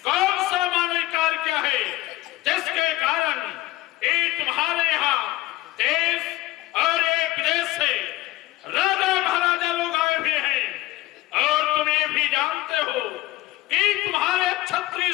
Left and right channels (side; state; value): right; quieter; 17.6 dB